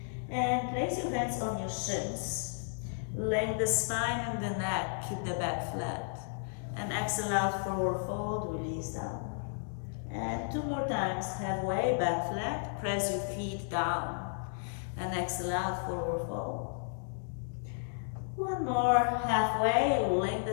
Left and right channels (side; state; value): right; silent; digital silence